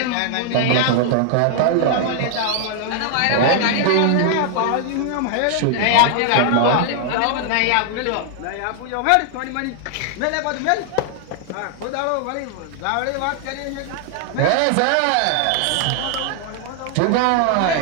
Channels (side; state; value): both; different; correlation 0.00